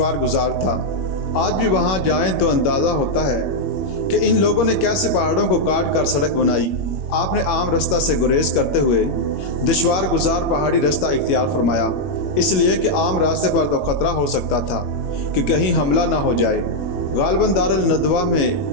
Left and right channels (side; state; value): right; late; 21 ms